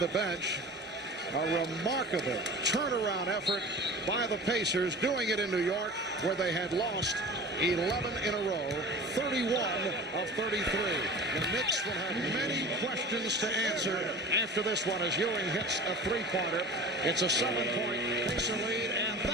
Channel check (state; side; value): normal; both; correlation 0.37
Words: bench. A remarkable turnaround effort by the Pacers, doing it in New York, where they had lost 11 in a row, 31 of 33. The Knicks will have many questions to answer after this one as Ewing hits a three-pointer. It's a 7-point Pacer lead, and